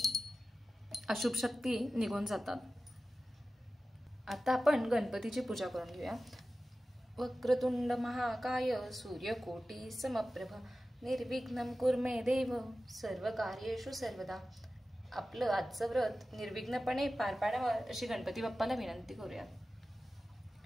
अशुभ शक्ती निघून जातात. आता आपण गणपतीची पूजा करून घेऊया. वक्रतुंड महाकाय सूर्यकोटी समप्रभ निर्विघ्नं कुरु मे देव सर्व कार्येषु सर्वदा. आपलं आजचं व्रत निर्विघ्नपणे पार पाडावं अशी गणपती बाप्पाला विनंती करूया.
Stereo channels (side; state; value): both; normal; correlation 0.94